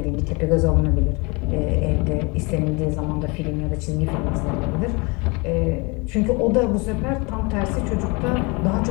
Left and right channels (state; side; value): quieter; right; 28.6 dB